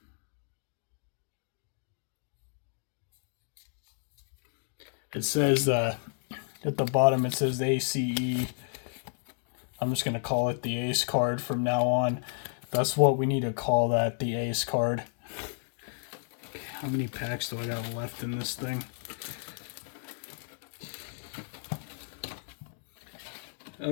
It says at the bottom it says ACE. I'm just gonna call it the Ace card from now on. That's what we need to call that, the Ace card. How many packs do I got left in this thing?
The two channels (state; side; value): silent; right; digital silence